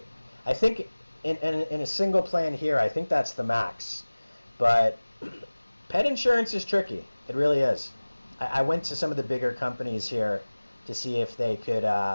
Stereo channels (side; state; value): both; inverted; correlation -1.00